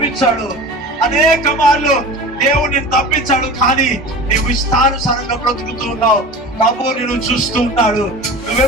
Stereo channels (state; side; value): normal; both; correlation 0.35